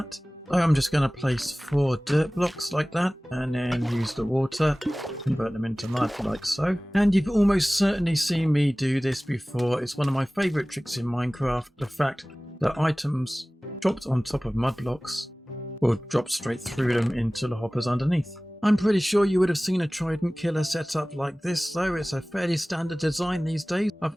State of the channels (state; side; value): normal; both; correlation 0.98